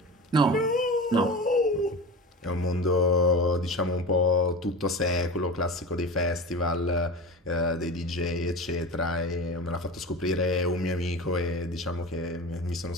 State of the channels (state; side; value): normal; both; correlation 0.30